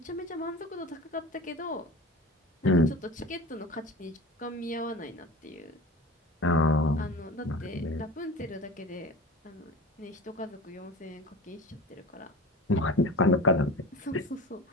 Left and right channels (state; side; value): normal; both; correlation 0.34